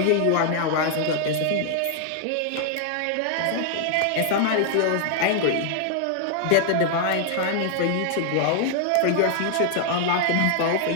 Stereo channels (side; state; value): both; different; correlation 0.00